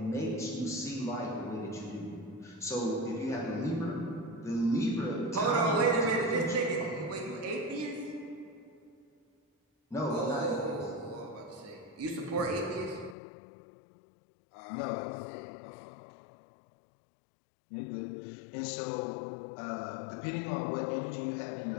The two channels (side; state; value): right; drops out; at 13.2 s